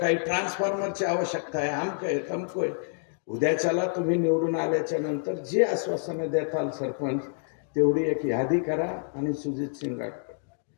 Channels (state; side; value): silent; right; digital silence